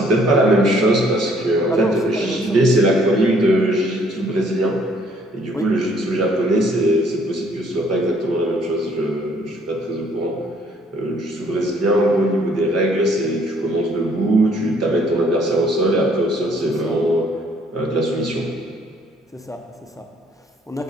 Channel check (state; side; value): normal; both; correlation 0.62